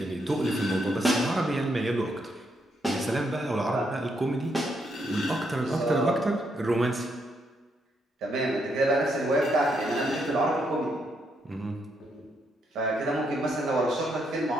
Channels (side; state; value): both; normal; correlation 0.77